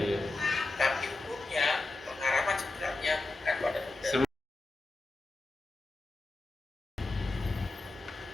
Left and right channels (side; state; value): right; quieter; 3.1 dB